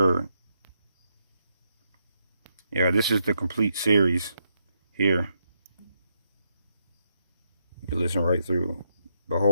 Yeah, this is the complete series here. You can listen right through.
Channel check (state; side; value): inverted; both; correlation -0.79